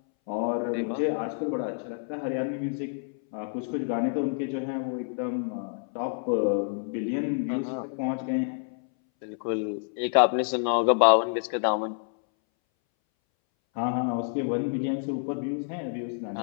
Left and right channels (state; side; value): silent; right; 59 dB below the other